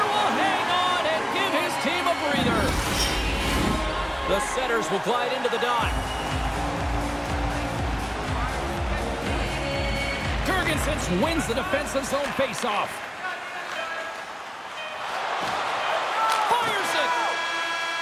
setters will glide into the dot. Jurgensen wins the defensive zone faceoff. Fires it!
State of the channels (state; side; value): identical; both; correlation 1.00